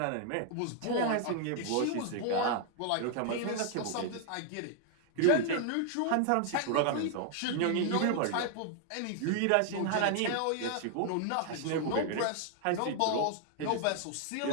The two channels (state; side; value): different; both; correlation 0.00